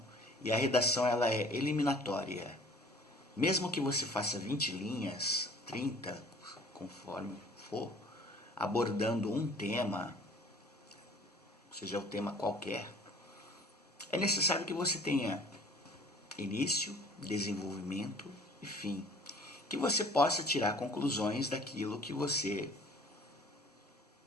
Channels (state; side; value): normal; both; correlation 0.50